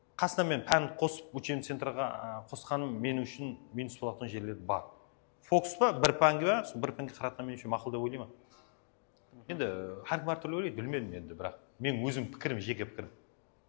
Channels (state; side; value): silent; right; digital silence